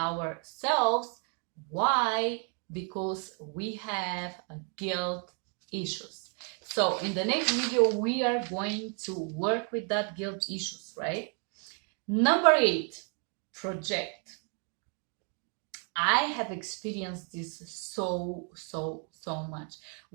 why, because we have guilt issues. So in the next video we are going to work with that guilt issues, right? Number 8, project. I have experienced this so much.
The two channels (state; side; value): quieter; left; 39.8 dB